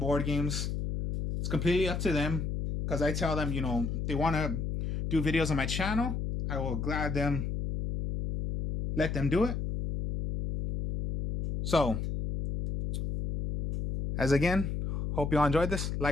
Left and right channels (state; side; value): noise; left; hum, 2 dB below the sound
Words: games. It's completely up to them, because I tell them, you know, they want to do videos on my channel. I will let them do it. So, As again, hope you all enjoyed this.